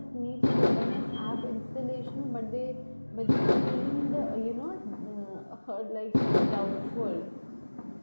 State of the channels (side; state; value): both; inverted; correlation -1.00